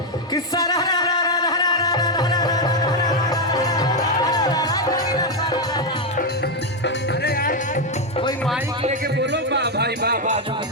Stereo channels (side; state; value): both; normal; correlation 0.04